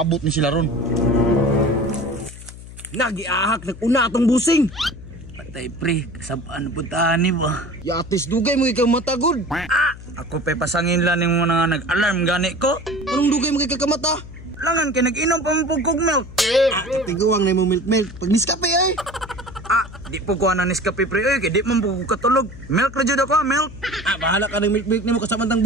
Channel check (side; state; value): left; noise; hum, 15 dB below the sound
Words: ni sila ron. Nagiahak nag-una atong busing. Patay pre, kasabaan puntahan ni ba? Yatis dugay mo ikaw matagod. Ako pa pasangin lang yung mga nag-alarm gani ko. Anong dugay mo kay kakamata? Langan kay nag-inom pa mo kog milk. Tiguang na mo milk. Pag niskape ay. Di po ko na Nescafe pre oy, kay di man po ko katulog. Milk ra jud ako, milk. Bahala ka ng milk nimo kasamantang